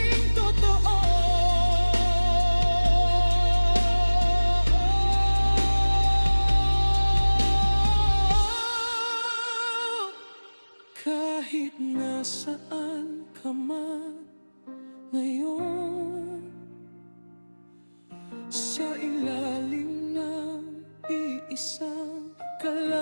Kahit nasaan ka man ngayon, sa ilalim ng iisang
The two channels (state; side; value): inverted; both; correlation -1.00